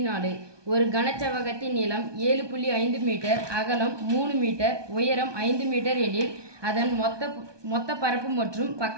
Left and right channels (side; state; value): left; late; 1.2 ms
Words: ஒரு கனச்செவ்வகத்தின் நீளம் 7.5 மீட்டர், அகலம் 3 மீட்டர், உயரம் 5 மீட்டர் எனில் அதன் மொத்த பரப்பு மற்றும் பக்க